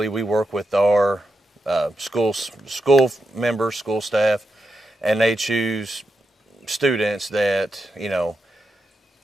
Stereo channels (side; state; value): both; normal; correlation 0.86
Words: we work with our school members, school staff, and they choose students that, a